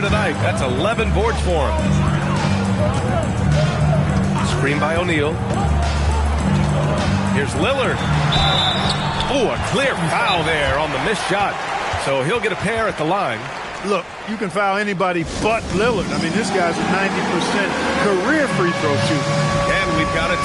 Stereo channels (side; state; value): both; identical; correlation 1.00